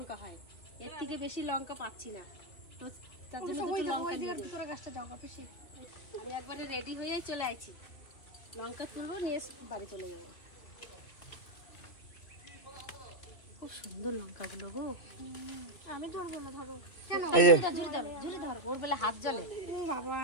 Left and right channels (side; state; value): right; late; 2.7 ms